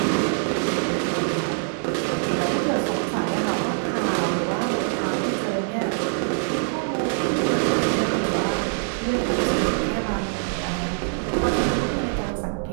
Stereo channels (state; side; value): silent; left; digital silence